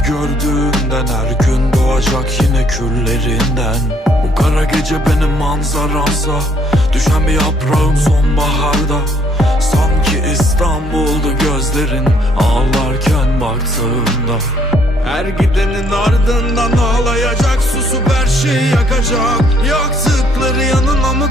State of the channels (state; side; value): normal; both; correlation 0.66